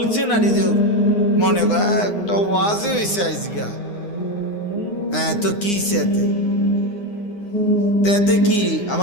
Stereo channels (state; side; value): late; right; 9.7 ms